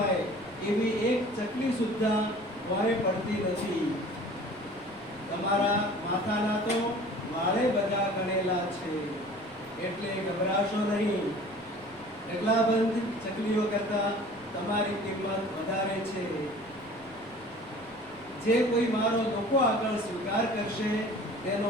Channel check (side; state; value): left; noise; rumble, 25 dB below the sound